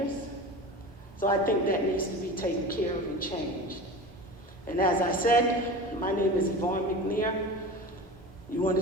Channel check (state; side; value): normal; both; correlation 0.32